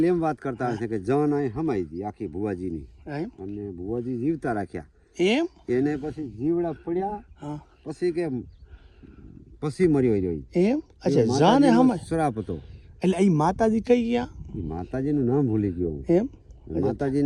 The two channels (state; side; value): identical; both; correlation 1.00